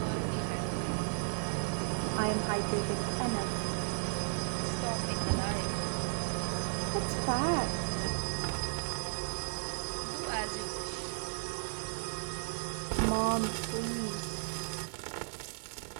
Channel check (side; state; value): left; silent; digital silence